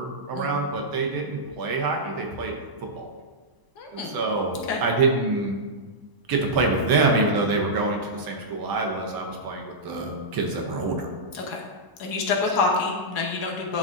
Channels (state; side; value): late; left; 1.0 ms